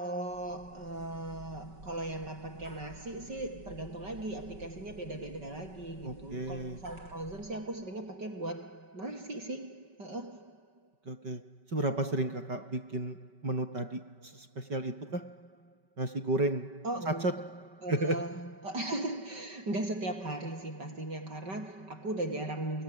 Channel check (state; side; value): late; left; 5.2 ms